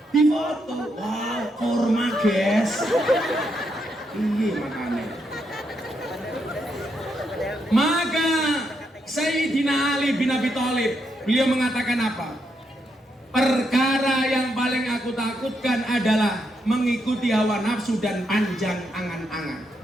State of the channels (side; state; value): both; normal; correlation 0.80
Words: difoto, wow, kurma guys. Iya makanya. Maka Sayyidina Ali bin Abi Thalib, beliau mengatakan apa? Perkara yang paling aku takutkan adalah mengikuti hawa nafsu dan panjang angan-angan.